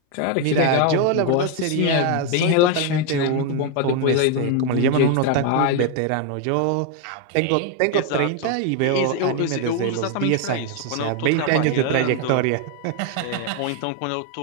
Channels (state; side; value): different; both; correlation 0.01